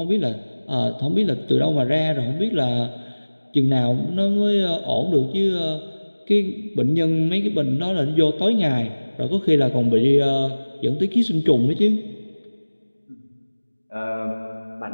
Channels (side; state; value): both; inverted; correlation -1.00